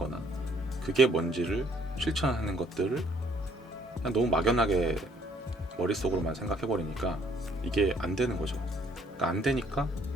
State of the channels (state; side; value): normal; both; correlation 0.64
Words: 그게 뭔지를 실천하는 것들을 그냥 너무 막연하게 머릿속으로만 생각해버리니까 이게 안 되는 거죠. 그러니까 안 되니까